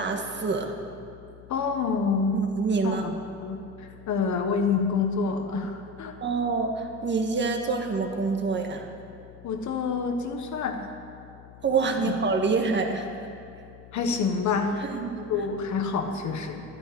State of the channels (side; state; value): left; noise; hum, 19 dB below the sound